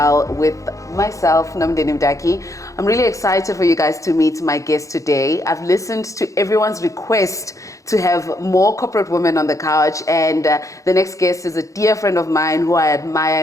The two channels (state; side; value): late; right; 0.15 ms